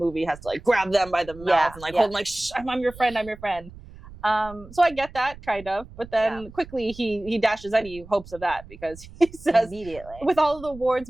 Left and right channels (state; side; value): noise; right; rumble, 18 dB below the sound